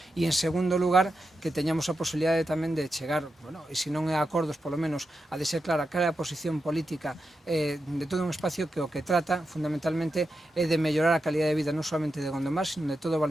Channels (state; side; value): normal; both; correlation 0.88